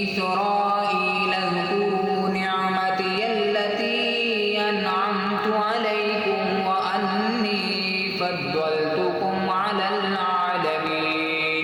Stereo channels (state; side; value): identical; both; correlation 1.00